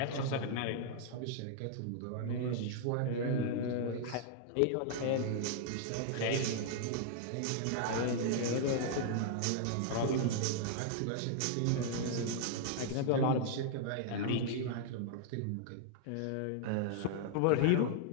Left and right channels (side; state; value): both; different; correlation -0.01